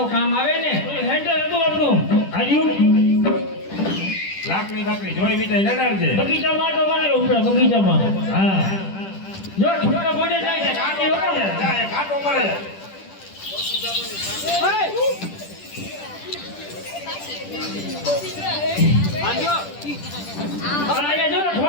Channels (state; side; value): late; right; 10 ms